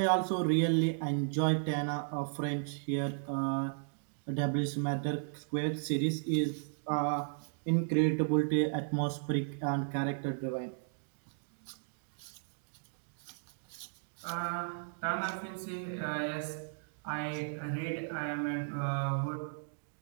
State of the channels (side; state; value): left; silent; digital silence